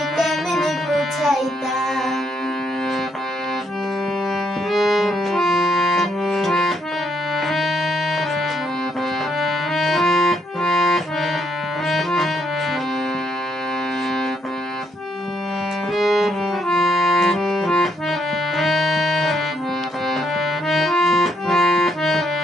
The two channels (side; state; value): both; normal; correlation 0.73